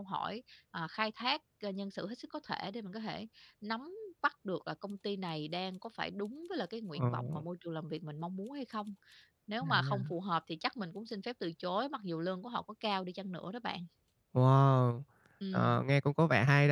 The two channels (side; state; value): both; identical; correlation 1.00